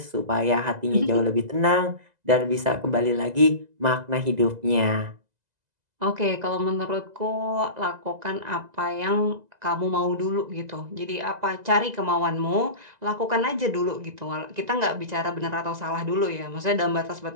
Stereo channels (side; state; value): left; late; 2.0 ms